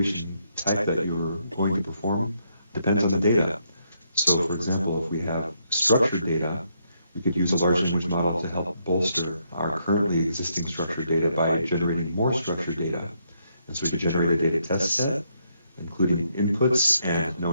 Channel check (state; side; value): inverted; both; correlation -0.76